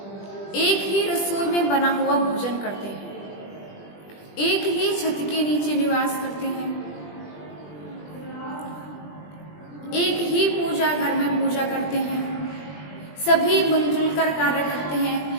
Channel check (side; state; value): right; late; 20 ms